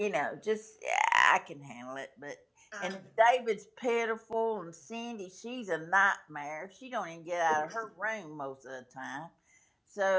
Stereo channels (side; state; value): both; identical; correlation 1.00